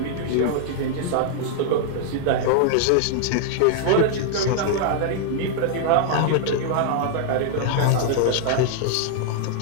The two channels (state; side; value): different; both; correlation -0.01